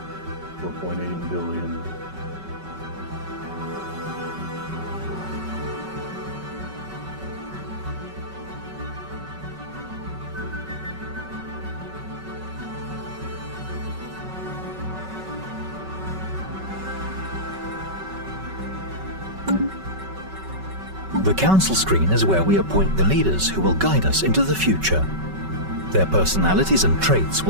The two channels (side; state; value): left; late; 5.3 ms